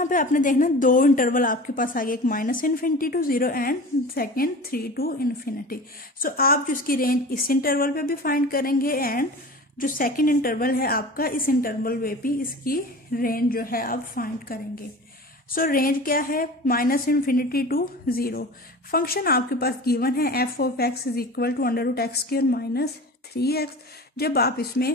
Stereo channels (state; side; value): normal; both; correlation 0.36